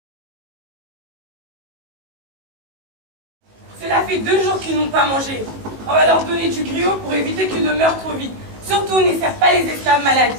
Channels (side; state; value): left; late; 19 ms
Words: Cela fait 2 jours qu'ils n'ont pas mangé. On va leur donner du griot pour éviter qu'ils ne meurent trop vite. Surtout, ne sert pas les esclaves malades.